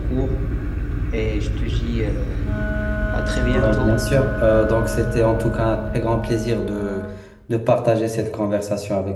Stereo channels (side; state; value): both; identical; correlation 1.00